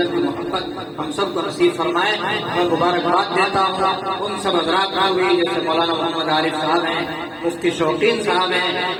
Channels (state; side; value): identical; both; correlation 1.00